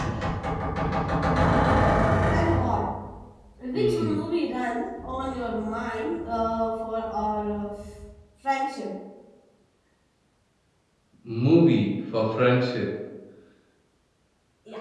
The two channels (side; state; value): both; identical; correlation 1.00